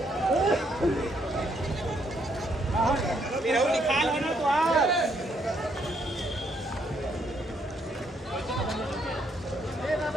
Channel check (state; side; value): normal; both; correlation 0.72